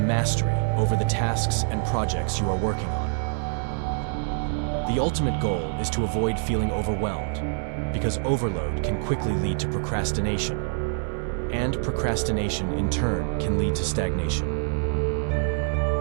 over the tasks and projects you are working on. The ultimate goal is to avoid feeling overwhelmed, because overload can quickly lead to procrastination, and procrastination in turn can lead to stagnation.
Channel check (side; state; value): left; silent; digital silence